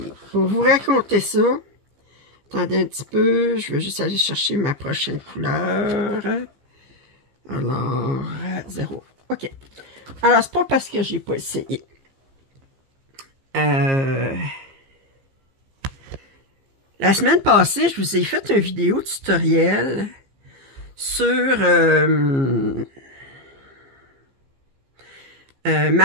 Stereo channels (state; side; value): late; left; 15 ms